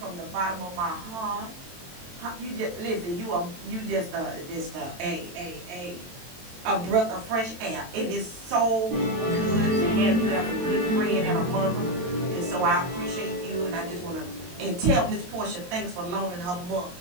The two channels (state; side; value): late; left; 22 ms